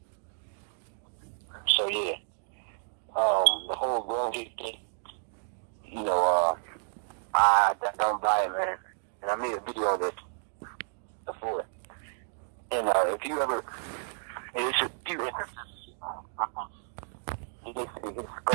So, yeah. The whole glovegate thing, you know, I don't buy it, man. And I made a video of it before. And if you ever, it's a few instances. His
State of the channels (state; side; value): silent; left; digital silence